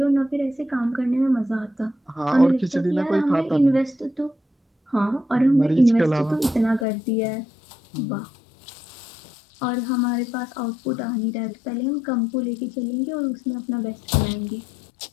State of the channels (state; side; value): drops out; right; at 6.9 s